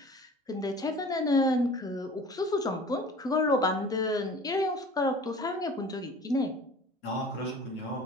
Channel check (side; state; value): both; normal; correlation 0.44